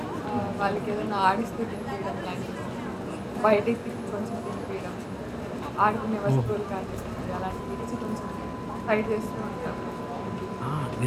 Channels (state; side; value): identical; both; correlation 1.00